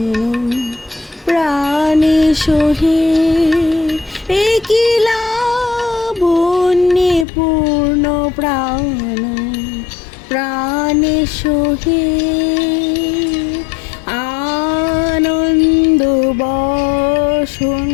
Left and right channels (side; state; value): right; drops out; at 7.2 s